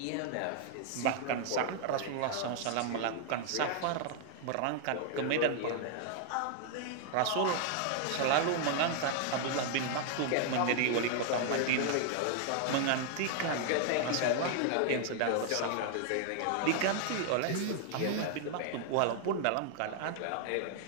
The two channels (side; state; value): both; different; correlation 0.00